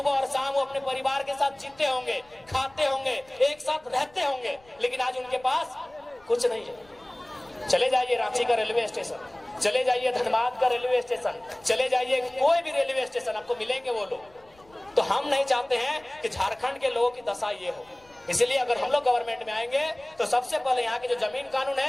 और शाम वो अपने परिवार के साथ जीते होंगे, खाते होंगे, एक साथ रहते होंगे। लेकिन आज उनके पास कुछ नहीं है। चले जाइए रांची का रेलवे स्टेशन, चले जाइए धनबाद का रेलवे स्टेशन, चले जाइए कोई भी रेलवे स्टेशन, आपको मिलेंगे वो लोग। तो हम नहीं चाहते हैं कि झारखंड के लोगों की दशा ये हो। इसलिए अगर हम लोग गवर्नमेंट में आएंगे तो सबसे पहले यहाँ के जो जमीन कानून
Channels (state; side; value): noise; left; rumble, 29 dB below the sound